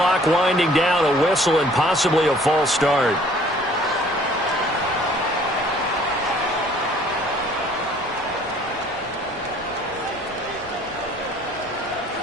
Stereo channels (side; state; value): both; normal; correlation 0.56